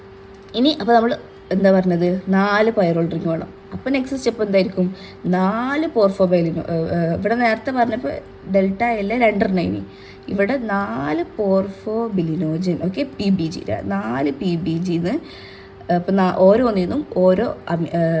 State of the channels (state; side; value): identical; both; correlation 1.00